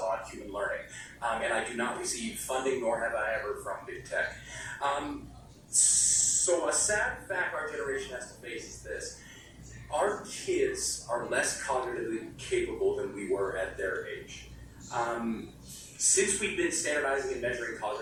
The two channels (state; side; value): identical; both; correlation 1.00